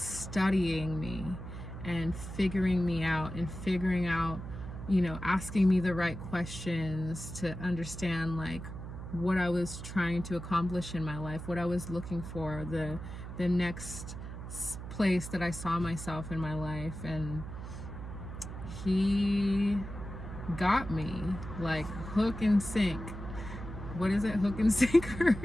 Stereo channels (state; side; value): noise; right; hum, 9 dB below the sound